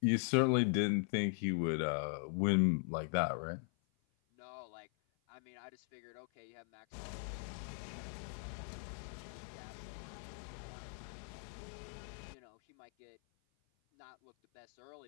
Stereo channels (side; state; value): right; silent; 51 dB below the other